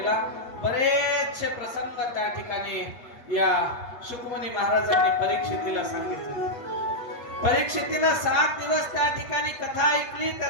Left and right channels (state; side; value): late; right; 7.9 ms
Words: बरेचसे प्रसंग त्या ठिकाणी या शुकमुनी महाराजांनी परीक्षितीला सांगितले. परीक्षितीला 7 दिवस त्या ठिकाणी कथा ऐकली.